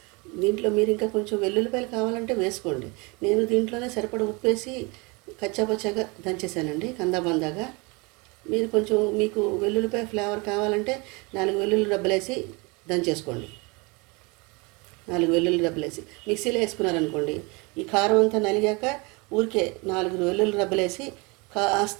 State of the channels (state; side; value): quieter; left; 27.9 dB